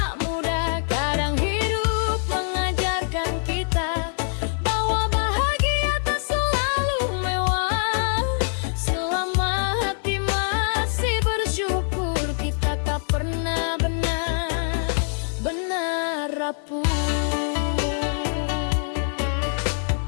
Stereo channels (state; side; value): silent; right; digital silence